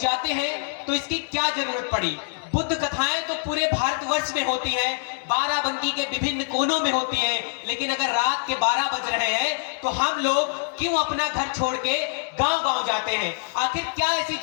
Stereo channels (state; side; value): silent; right; digital silence